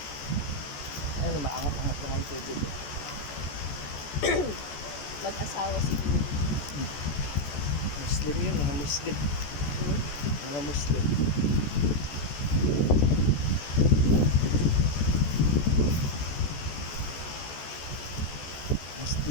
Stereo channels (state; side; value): late; right; 14 ms